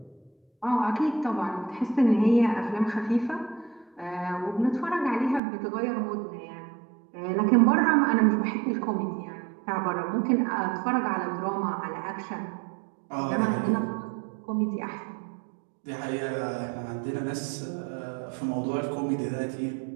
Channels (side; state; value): left; drops out; at 5.4 s